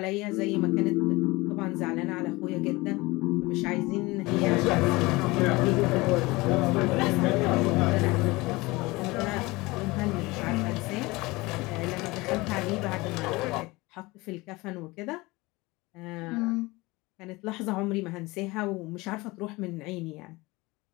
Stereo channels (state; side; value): quieter; right; 22.4 dB